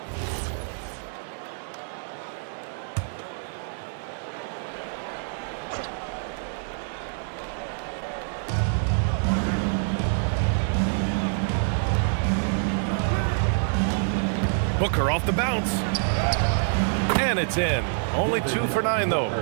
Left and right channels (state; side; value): silent; left; 61 dB below the other